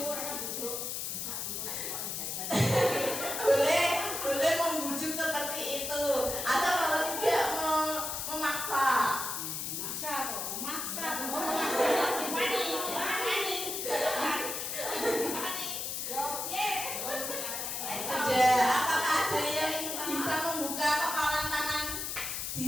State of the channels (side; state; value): left; noise; hiss, 3 dB below the sound